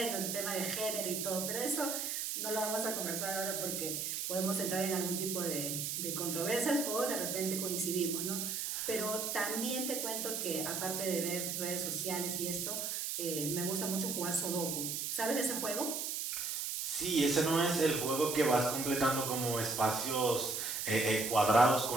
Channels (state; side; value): noise; right; hiss, 2 dB below the sound